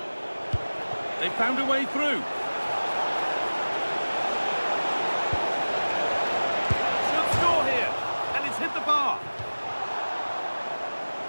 They found a way through. Should score here, and it's hit the bar.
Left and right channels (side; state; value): both; inverted; correlation -1.00